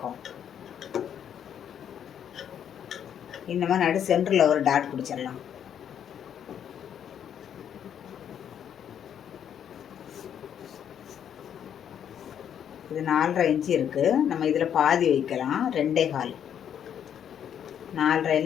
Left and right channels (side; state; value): right; quieter; 9.0 dB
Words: இந்த மாதிரி நடு சென்டரில் ஒரு டாட் பிடிச்சிடலாம். இது 4.5 இன்ச்சு இருக்குது. நம்ம இதில் பாதி வைக்கலாம். 2.25.